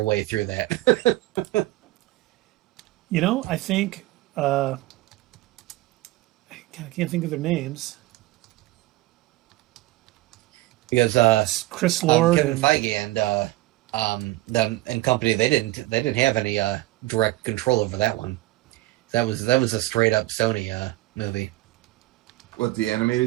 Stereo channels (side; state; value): left; quieter; 18.2 dB